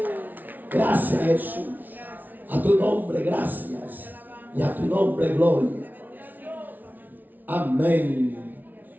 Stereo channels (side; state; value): left; late; 0.082 ms